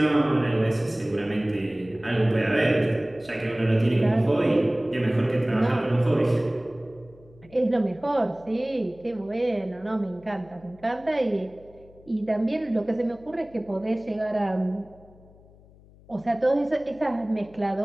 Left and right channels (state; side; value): noise; left; hum, 25 dB below the sound